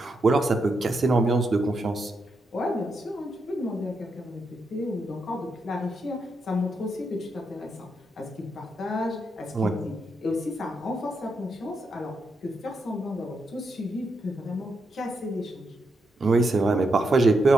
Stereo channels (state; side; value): normal; both; correlation 0.82